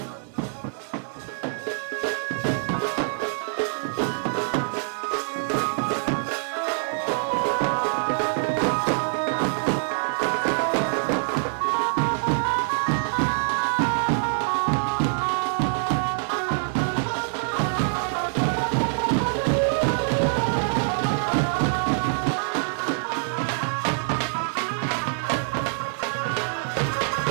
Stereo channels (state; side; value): silent; left; 62 dB below the other